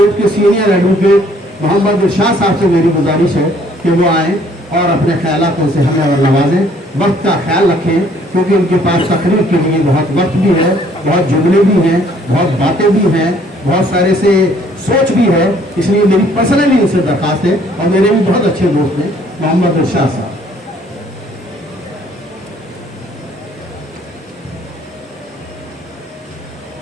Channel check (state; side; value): normal; both; correlation 0.61